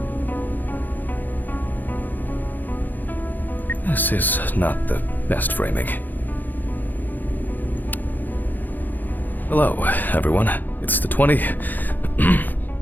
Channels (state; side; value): late; right; 0.086 ms